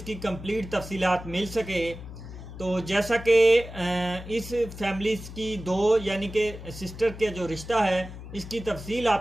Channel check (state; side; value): noise; left; hum, 12 dB below the sound